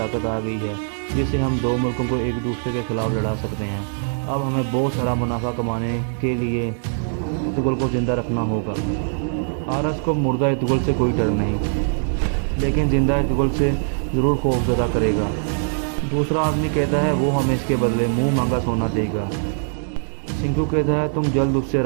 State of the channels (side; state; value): left; silent; 64 dB below the other